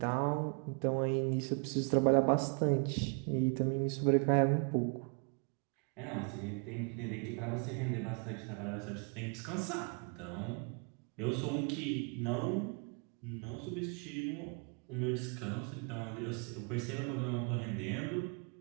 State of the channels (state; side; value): quieter; left; 36.9 dB